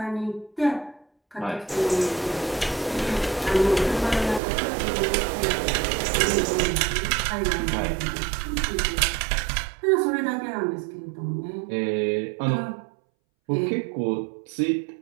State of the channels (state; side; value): drops out; left; at 4.4 s